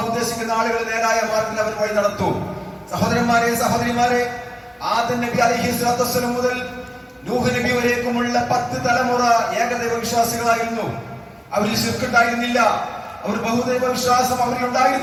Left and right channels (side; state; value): both; identical; correlation 1.00